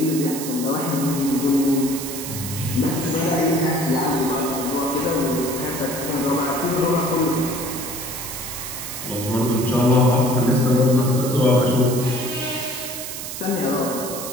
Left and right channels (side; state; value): right; noise; hiss, 7 dB below the sound